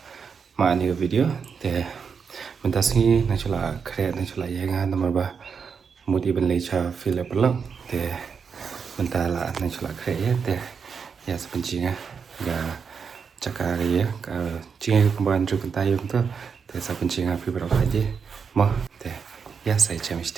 ma ni video. Mentas ni nachola kre nachola yenga nomor ba mudi ben lecha file vlog. Mentala nachola kre ya sepencinga ga cakar ya ka cinga kemban juk tayum tu sepencinga Fibro Khadi. Mo ya saya cam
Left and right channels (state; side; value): quieter; left; 6.1 dB